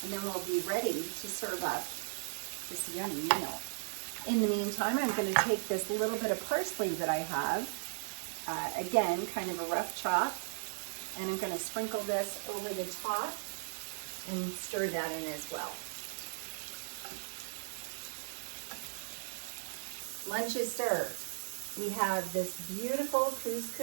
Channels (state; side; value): silent; left; digital silence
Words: and then we'll be ready to serve up this yummy meal. In the meantime, I'm gonna take this little bit of parsley that I have, again, kind of a rough chop, and I'm gonna sprinkle this over the top and stir that in as well. Lunch is served. We have this beautiful